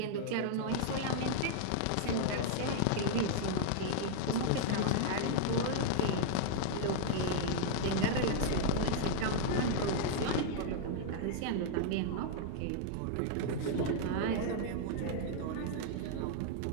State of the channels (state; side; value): different; both; correlation -0.01